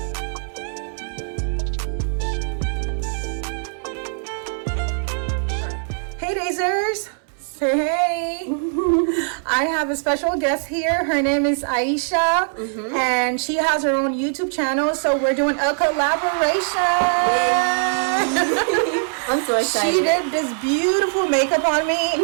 Hey Dazers! Say hey! I have a special guest here. Her name is Ayeesha, and she has her own YouTube channel. So we're doing a collaboration. I'm so excited. She did this beautiful makeup on me,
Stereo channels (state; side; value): silent; left; 62 dB below the other